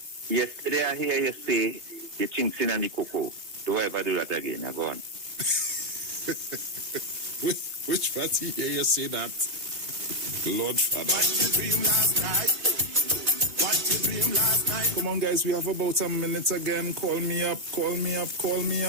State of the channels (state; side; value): late; left; 3.3 ms